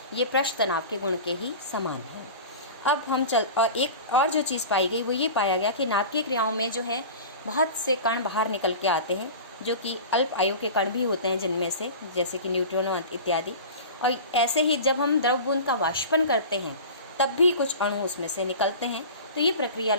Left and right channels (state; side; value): inverted; both; correlation -0.34